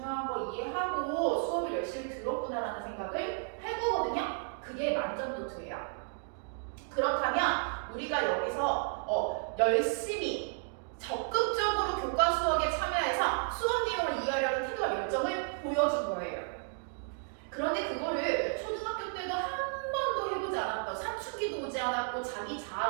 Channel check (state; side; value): silent; left; 56 dB below the other